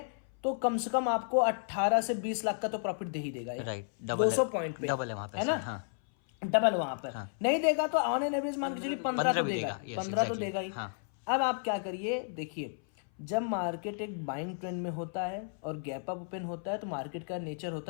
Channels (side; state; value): right; silent; 56 dB below the other